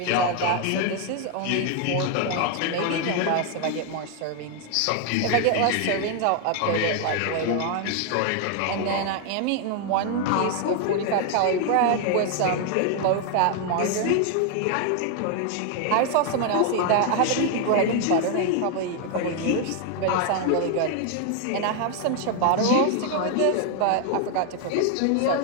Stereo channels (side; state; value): both; different; correlation 0.01